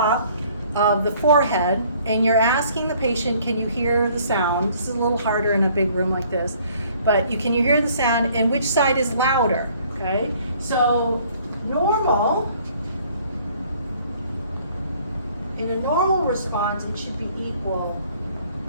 of the forehead, and you're asking the patient, can you hear the sound? This is a little harder in a big room like this, but can you hear the sound, and which side is louder, okay? So normal, in a normal response, it should be equal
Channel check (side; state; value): both; inverted; correlation -0.58